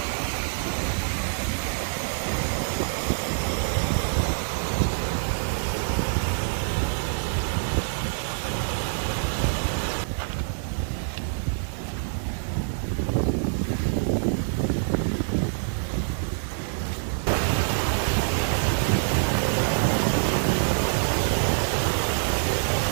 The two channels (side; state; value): left; silent; digital silence